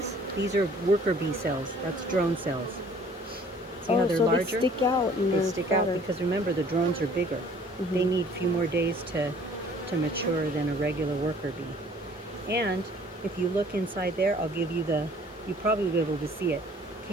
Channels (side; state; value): both; normal; correlation 0.54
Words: These are worker bee cells. That's drone cells. See how they're larger? They stick out. And They stick out because remember, the drones are bigger. They need a few more days to mature than a regular worker bee. And if you look inside there, I'll give you you probably will be able to see it.